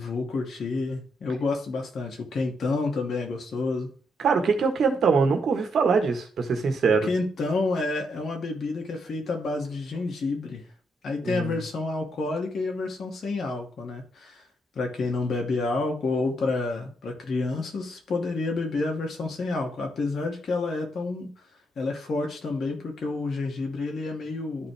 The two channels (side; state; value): both; normal; correlation 0.77